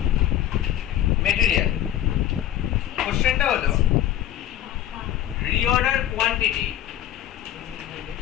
মেটেরিয়াল। কোশ্চেনটা হলো reorder quantity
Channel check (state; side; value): quieter; right; 11.8 dB